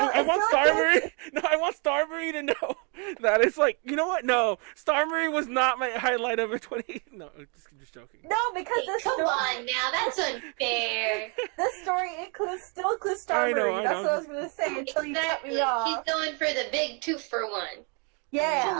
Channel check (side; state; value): left; quieter; 35.7 dB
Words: Marie. No, I want Star Marie to know that it's like, you know what? No, Star Marie was not my highlight of a 20. No, just joking. No, because this Come on now, that's unfair. This story still includes Star Marie. That's what I was gonna say until you cut me off. She's going for the big 2-for-1. Yeah.